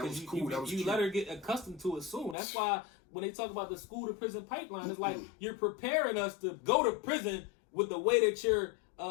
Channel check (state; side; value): drops out; right; at 2.4 s